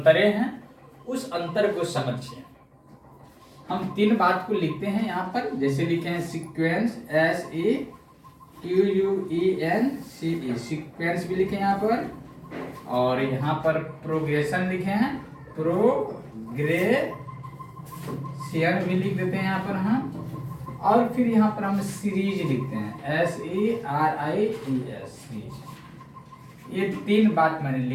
हैं। उस अंतर को समझिए। हम तीन बात को लिखते हैं यहाँ पर, जैसे लिखे हैं सीक्वेंस, SEQUENCE सीक्वेंस भी लिखे यहाँ पर, और यहाँ पर प्रोग्रेशन लिखे हैं, प्रोग्रेशन भी लिख देते हैं यहाँ पर हम, और फिर यहाँ पर हम सीरीज लिखते हैं, SERIES सीरीज। ये तीन बात मैंने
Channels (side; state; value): both; identical; correlation 1.00